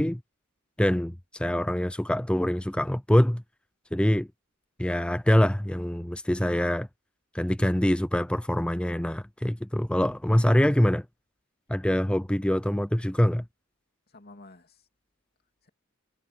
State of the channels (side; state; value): both; normal; correlation 0.98